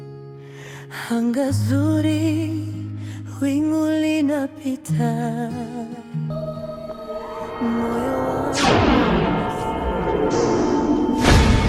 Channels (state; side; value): identical; both; correlation 1.00